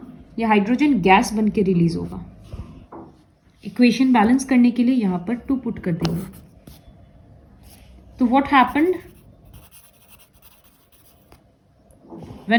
ये हाइड्रोजन गैस बन के रिलीज होगा. इक्वेशन बैलेंस करने के लिए यहाँ पर 2 पुट कर देंगे. तो what happened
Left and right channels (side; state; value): both; identical; correlation 1.00